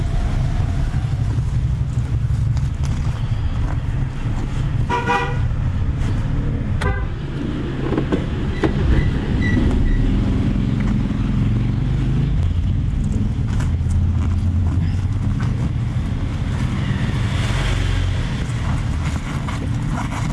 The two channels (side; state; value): both; identical; correlation 1.00